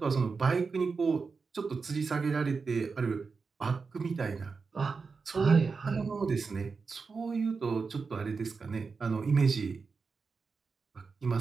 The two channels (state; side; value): quieter; left; 4.8 dB